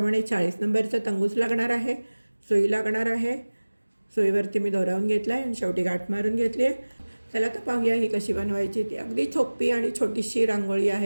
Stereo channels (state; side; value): inverted; both; correlation -1.00